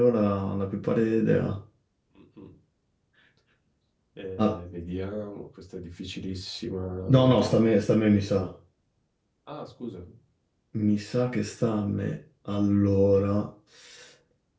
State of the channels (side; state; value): both; identical; correlation 1.00